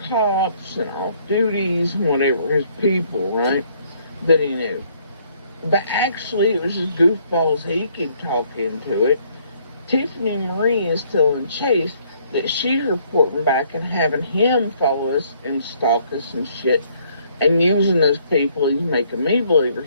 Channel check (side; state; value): both; inverted; correlation -0.65